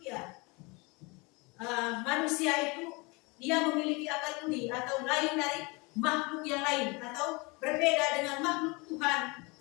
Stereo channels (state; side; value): quieter; right; 27.2 dB